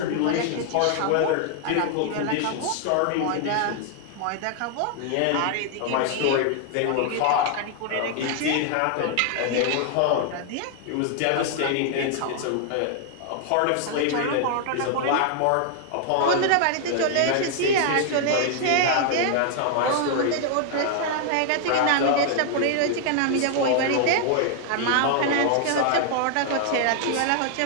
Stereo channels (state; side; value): different; both; correlation 0.00